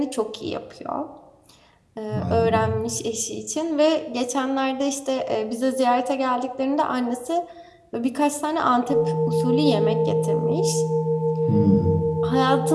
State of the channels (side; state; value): both; identical; correlation 1.00